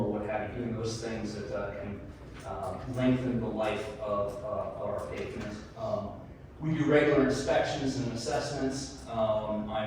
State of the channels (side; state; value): both; identical; correlation 1.00